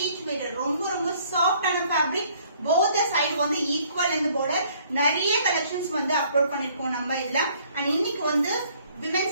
weight, ரொம்ப சாஃப்டான ஃபேப்ரிக். போத் சைடு வந்து ஈக்குவல் அண்ட் பார்டர். நிறைய கலெக்ஷன்ஸ் வந்து அப்லோட் பண்ணிருக்கோம் நம்ம இதுல. அண்ட் இன்னைக்கு வந்து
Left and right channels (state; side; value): inverted; both; correlation -0.61